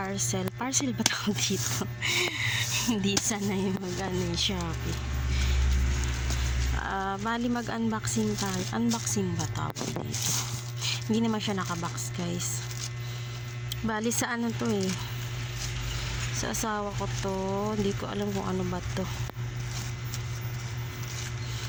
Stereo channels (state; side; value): identical; both; correlation 1.00